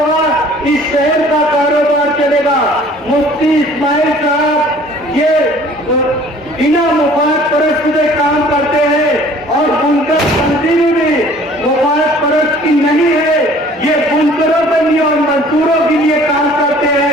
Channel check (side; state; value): both; normal; correlation 0.52